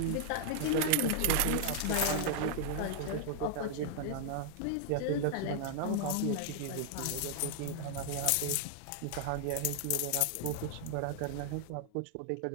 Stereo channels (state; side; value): different; both; correlation 0.00